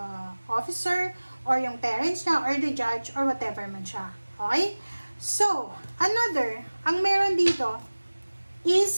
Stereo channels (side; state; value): both; inverted; correlation -1.00